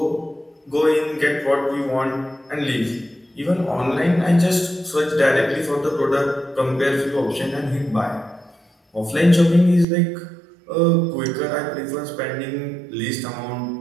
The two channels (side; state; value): left; drops out; at 9.9 s